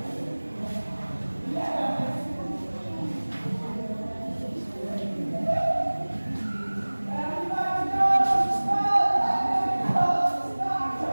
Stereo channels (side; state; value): both; inverted; correlation -1.00